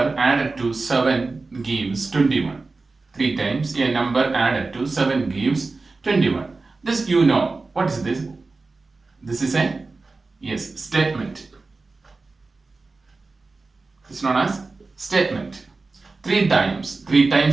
added to 7 gives 21. 3 times a number added to 7 gives 21. This you know. What is this? This is a statement. It's known as statement. 3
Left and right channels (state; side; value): quieter; left; 3.7 dB